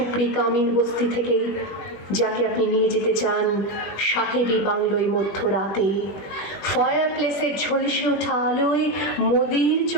কামিন বস্তি থেকে যাকে আপনি নিয়ে যেতে চান সাহেবী বাংলোয় মধ্যরাতে, ফায়ার প্লেসের ঝলসে ওঠা আলোয় মোদির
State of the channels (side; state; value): right; late; 20 ms